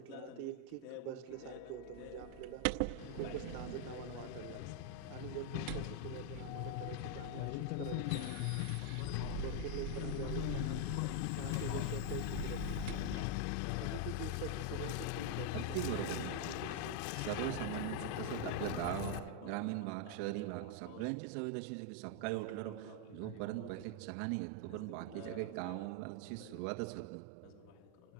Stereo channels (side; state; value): both; different; correlation 0.00